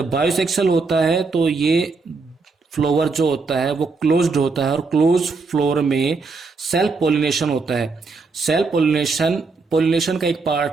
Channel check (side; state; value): left; quieter; 4.3 dB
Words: बायोसेक्सुअल होता है तो ये फ्लावर जो होता है वो क्लोज्ड होता है और क्लोज फ्लोर में सेल्फ पॉलिनेशन होता है। सेल्फ पॉलिनेशन का एक